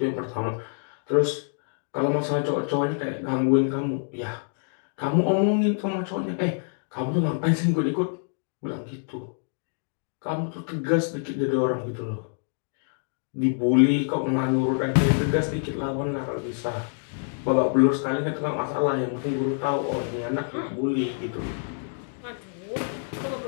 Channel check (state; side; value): silent; right; digital silence